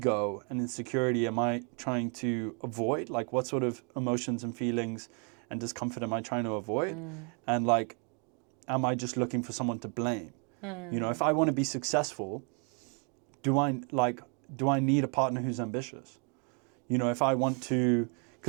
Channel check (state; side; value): quieter; left; 37.8 dB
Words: and insecurity am I trying to avoid? What sort of emotions and feelings and discomfort am I trying to avoid? And am I just looking for someone to blame? If I want to be successful, do I need a partner who's ambitious? If I want to,